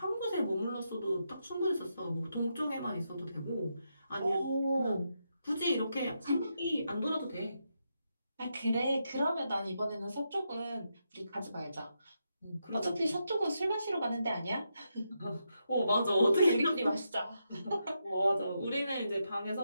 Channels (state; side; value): inverted; both; correlation -0.83